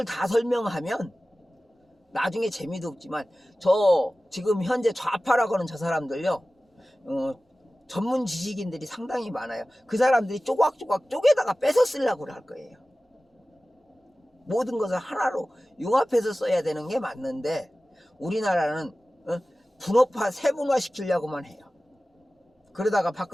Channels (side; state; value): both; normal; correlation 0.96